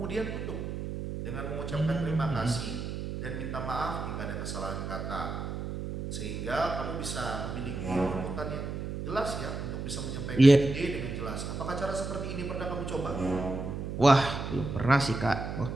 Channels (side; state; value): right; noise; hum, 5 dB below the sound